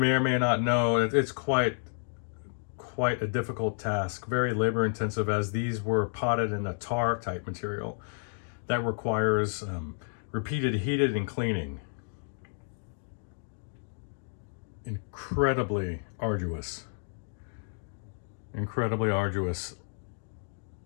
or may not know, it's quite a difficult task, very labor intensive, as these were potted in a tar type material that requires repeated heating and cleaning. Incredibly arduous.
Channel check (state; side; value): silent; right; digital silence